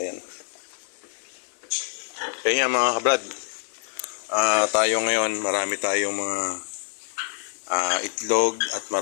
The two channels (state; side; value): silent; right; 61 dB below the other